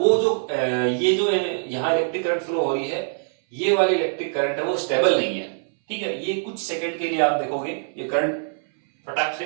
जो ये जो यहाँ इलेक्ट्रिक करंट फ्लो हो रही है ये वाली इलेक्ट्रिक करंट है वो स्टेबल नहीं है, ठीक है। ये कुछ सेकंड के लिए आप देखोगे ये करंट फटाक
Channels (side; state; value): left; silent; 63 dB below the other